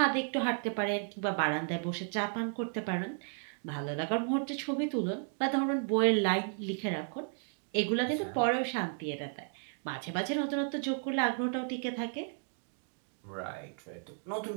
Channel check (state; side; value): silent; left; 55 dB below the other